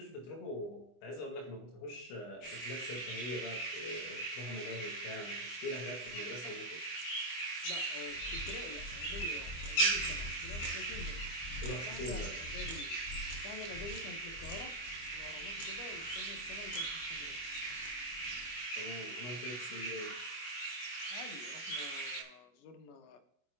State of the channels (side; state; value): right; late; 24 ms